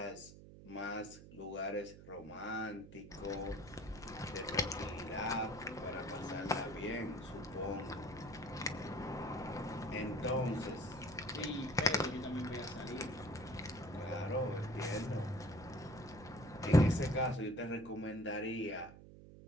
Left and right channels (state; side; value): noise; right; hum, 16 dB below the sound